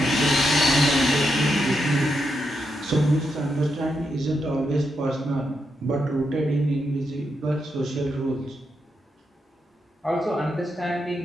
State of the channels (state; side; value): normal; both; correlation 0.83